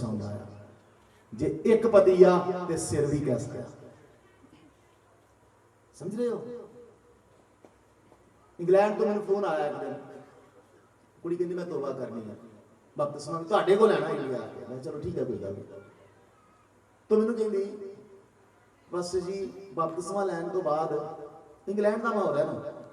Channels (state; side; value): identical; both; correlation 1.00